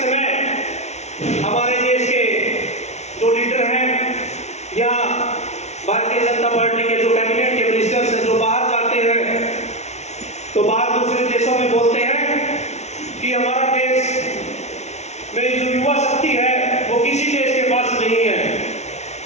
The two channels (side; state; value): right; late; 0.32 ms